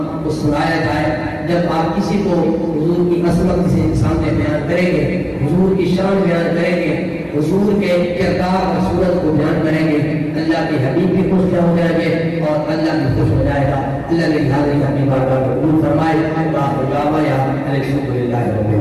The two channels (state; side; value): identical; both; correlation 1.00